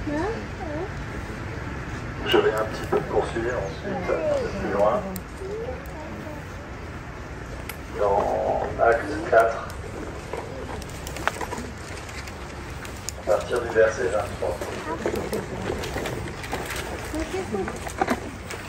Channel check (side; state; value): both; identical; correlation 1.00